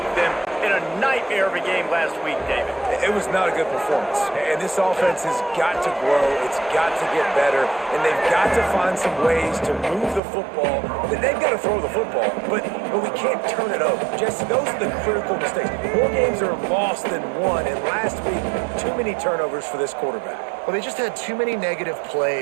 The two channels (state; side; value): drops out; left; at 10.2 s